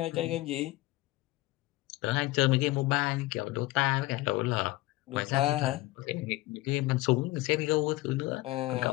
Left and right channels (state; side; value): quieter; right; 19.4 dB